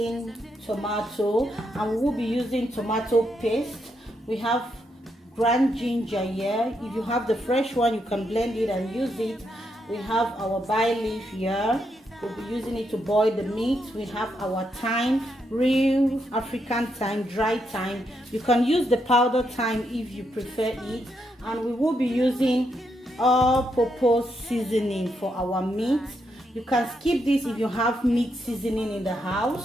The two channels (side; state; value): both; normal; correlation 0.80